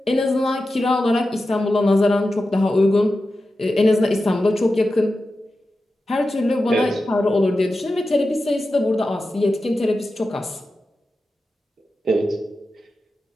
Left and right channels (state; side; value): normal; both; correlation 0.92